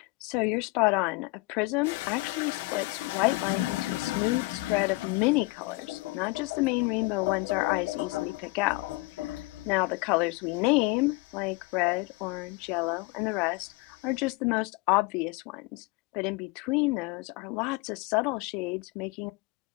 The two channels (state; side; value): quieter; right; 23.3 dB